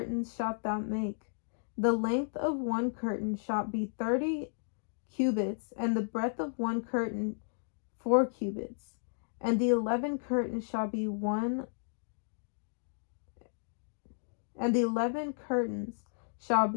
shalt thou make. The length of one curtain shall be 30 cubits, and the breadth of one curtain 4 cubits. And the 11 curtains shall be one, and the 11 curtains shall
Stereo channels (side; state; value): right; silent; digital silence